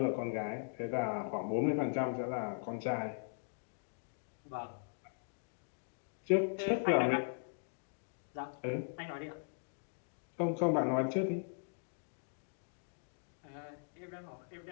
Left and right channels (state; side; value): silent; right; digital silence